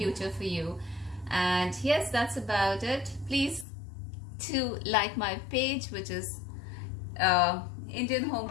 for you. And yes, that's about it. Please to like my page, which is Indian home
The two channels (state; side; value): drops out; right; at 3.7 s